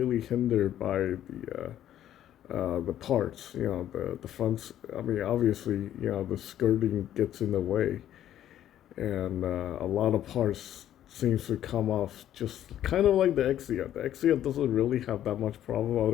hindered by the parts. The fronts. I mean, obviously, the skirting gets in the way, and a lot of parts seems to come off just kind of like the Exia. The Exia doesn't really have that much problem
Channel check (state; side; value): quieter; right; 11.5 dB